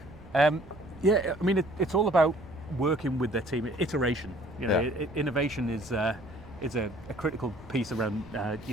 It's all about working with their team. Iteration. Innovation is a critical piece around.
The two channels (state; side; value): noise; right; rumble, 20 dB below the sound